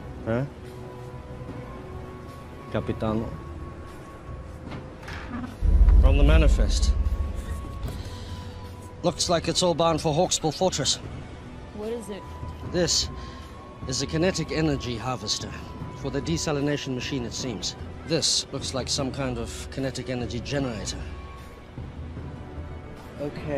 huh? Capitano? From the manifest. Looks like it's all bound for Hawksbill Fortress. What is it? This is a kinetic energy harvester for the desalination machine, it seems. This looks like some kind of kinetic energy generator.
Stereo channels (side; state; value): both; identical; correlation 1.00